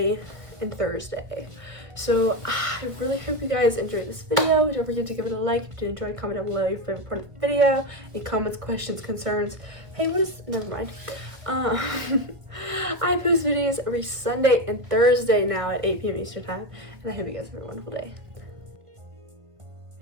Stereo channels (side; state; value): left; late; 1.4 ms